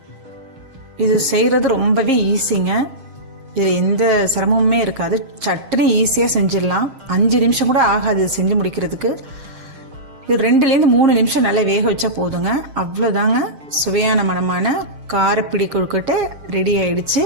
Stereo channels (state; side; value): late; left; 6.5 ms